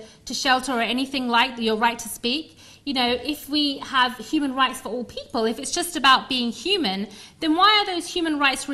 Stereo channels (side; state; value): both; identical; correlation 1.00